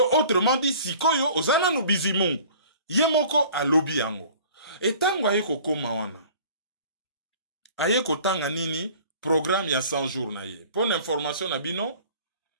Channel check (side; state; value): both; inverted; correlation -0.48